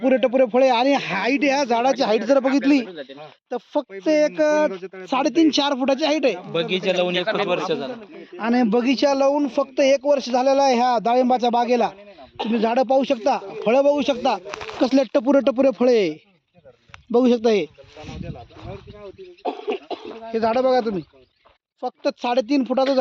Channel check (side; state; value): both; identical; correlation 1.00